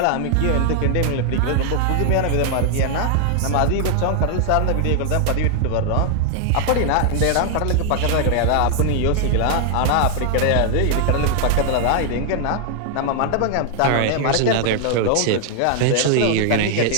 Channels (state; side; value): different; both; correlation 0.00